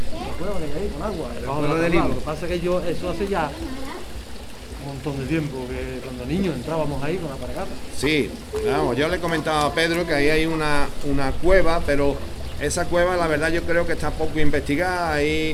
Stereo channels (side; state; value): both; identical; correlation 1.00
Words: cueva que hay ahí con agua, debajo de la tabla. Lo que pasa es que eso hace ya un montón de tiempo, que cuando niños entrábamos ahí con la paragata. Sí, vamos, yo le he comentado a Pedro que ahí hay una cueva, pero esa cueva, la verdad, yo creo que está poco investigada.